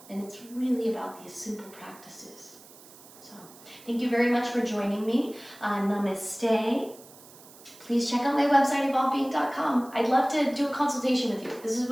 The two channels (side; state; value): right; noise; hiss, 21 dB below the sound